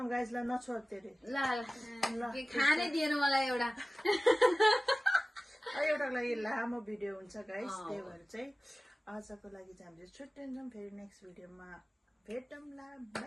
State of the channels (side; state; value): both; normal; correlation 0.96